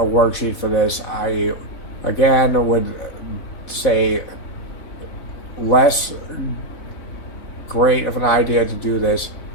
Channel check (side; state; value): right; late; 4.1 ms